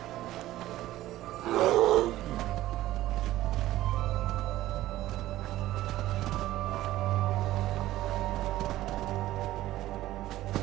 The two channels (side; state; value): left; quieter; 15.2 dB